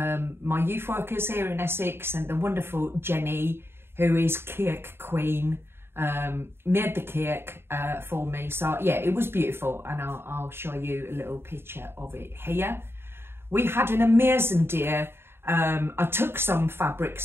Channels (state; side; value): late; left; 0.11 ms